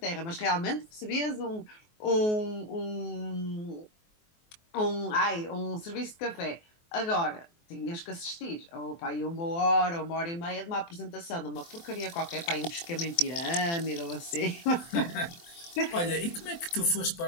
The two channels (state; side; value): late; right; 24 ms